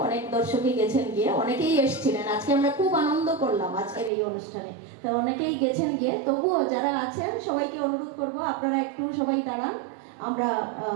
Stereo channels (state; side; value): drops out; left; at 4.1 s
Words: অনেক দর্শকই গেছেন গিয়ে, অনেকেই এসেছিলেন। আজকে আমরা খুব আনন্দ করলাম আজকের এই অনুষ্ঠানে। তো অনেকেই গেছেন গিয়ে, তবুও যারা আছেন সবাইকে অনুরোধ করব আপনারা একটু সবাই দাঁড়ান, আমরা